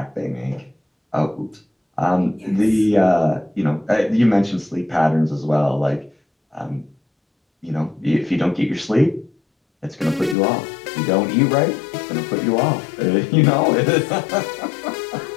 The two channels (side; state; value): right; drops out; at 10.4 s